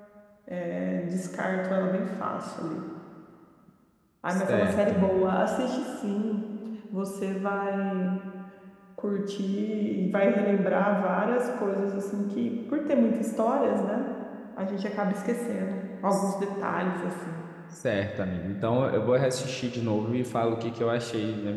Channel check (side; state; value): both; identical; correlation 1.00